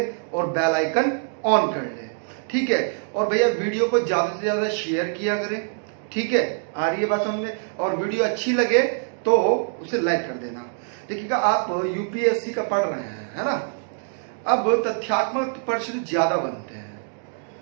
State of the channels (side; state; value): left; silent; digital silence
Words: और बेल आइकन ऑन कर ले, ठीक है। और भैया वीडियो को ज्यादा से ज्यादा शेयर किया करें, ठीक है। आ रही है बात समझ में। और वीडियो अच्छी लगे तो उसे लाइक कर देना। देखिएगा आप यूपीएससी का पढ़ रहे हैं, है ना। अब तथ्यात्मक प्रश्न ज्यादा बनते हैं।